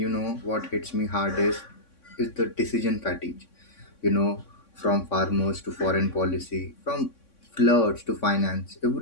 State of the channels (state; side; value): late; right; 3.6 ms